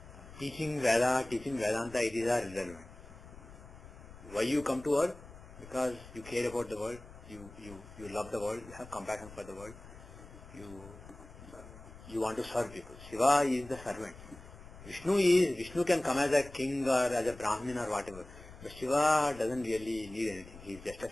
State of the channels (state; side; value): noise; left; rumble, 17 dB below the sound